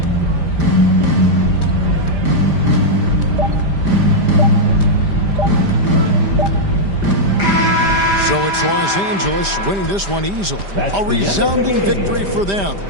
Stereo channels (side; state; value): left; late; 5.0 ms